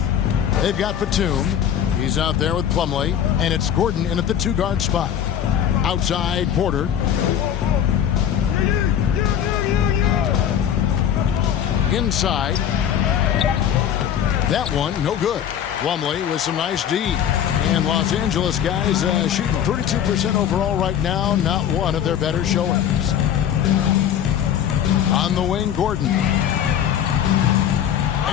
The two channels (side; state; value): right; quieter; 9.5 dB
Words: They've got Batum. He's out there with Plumlee. And it's Gordon in at the two-guard spot. Outside, Porter. Inside. That one, no good. Plumlee with some nice D. And Los Angeles guys shooting 32% overall right now. Not one of their better showings. On the wing, Gordon.